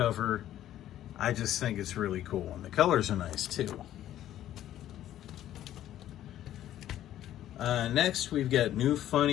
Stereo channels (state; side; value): quieter; right; 12.3 dB